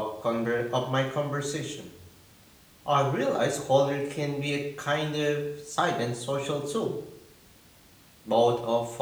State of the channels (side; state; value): both; identical; correlation 1.00